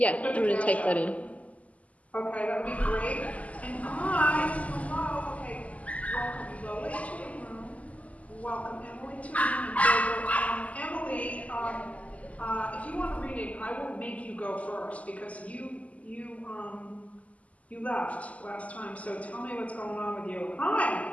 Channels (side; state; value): right; late; 0.070 ms